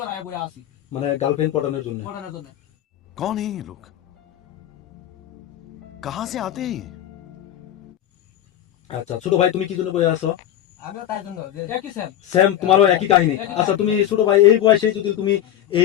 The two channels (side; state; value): right; quieter; 11.7 dB